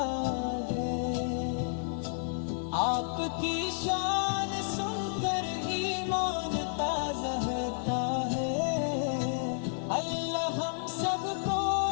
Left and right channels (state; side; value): silent; right; digital silence